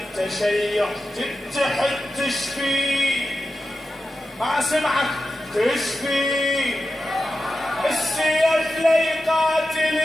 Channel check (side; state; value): both; normal; correlation 0.91